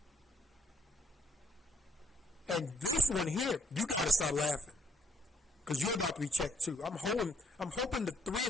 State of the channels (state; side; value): normal; both; correlation 0.69